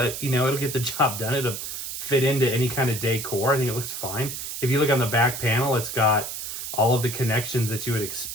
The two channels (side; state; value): right; noise; hiss, 6 dB below the sound